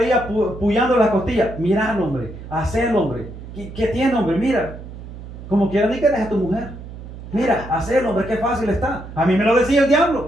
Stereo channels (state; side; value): noise; right; hum, 13 dB below the sound